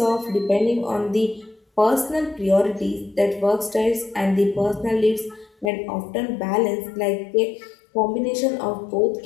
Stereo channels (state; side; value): drops out; right; at 5.7 s